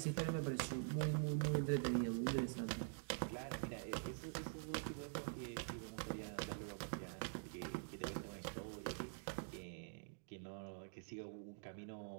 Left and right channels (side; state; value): left; silent; digital silence